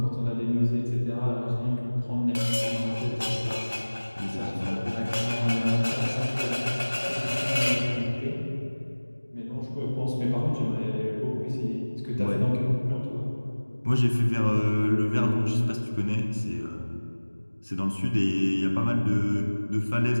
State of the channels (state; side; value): inverted; both; correlation -1.00